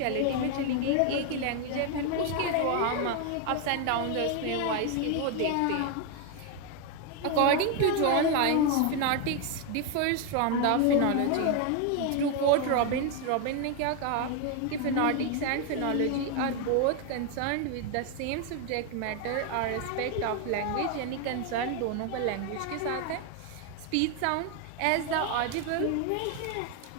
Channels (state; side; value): different; both; correlation 0.01